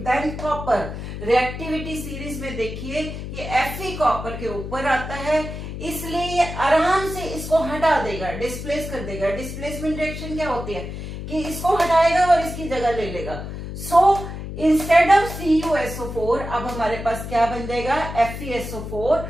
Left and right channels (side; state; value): left; noise; hum, 8 dB below the sound